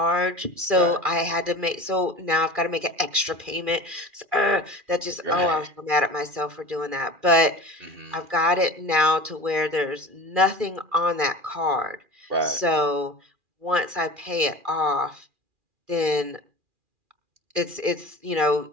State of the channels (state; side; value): late; left; 2.4 ms